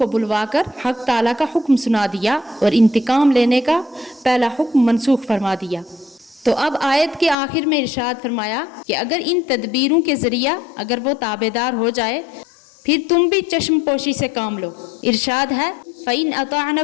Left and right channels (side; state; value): right; drops out; at 7.4 s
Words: بلوا کر حق تعالیٰ کا حکم سنا دیا اور انتقام لینے کا پہلا حکم منسوخ فرما دیا۔ تو اب آیت کے آخر میں ارشاد فرمایا کہ اگر ان تدبیروں کے ذریعہ اگر وہ تابعدار ہو جائے پھر تم بھی چشم پوشی سے کام لو۔ ارشاد ہے فَإِنْ